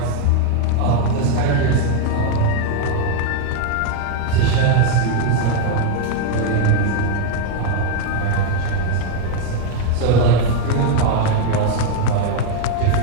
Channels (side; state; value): both; different; correlation 0.01